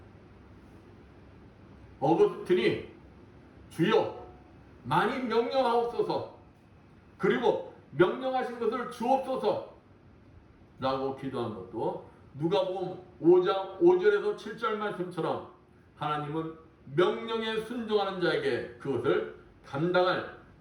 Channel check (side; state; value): both; identical; correlation 1.00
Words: 어거스틴이 주여 많이 명령하옵소서 그리고 명령하신 것을 주옵소서 라고 기도한 것도 누가복음 5장 5절에서 7절 말씀처럼 하나님은 명령에 순종하는 자에게 그것을 감당할